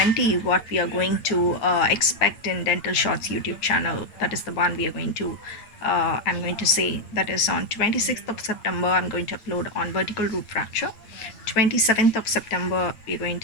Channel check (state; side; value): late; right; 9.0 ms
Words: what we are going to expect in Dental Shots YouTube channel. That is the one we are going to I'm going to say, that is on 26th of September I'm going to upload on vertical root fracture. 27th of September we're going